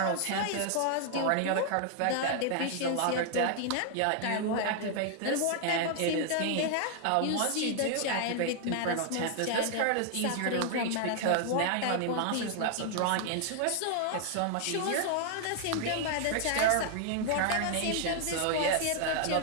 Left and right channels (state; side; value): different; both; correlation 0.00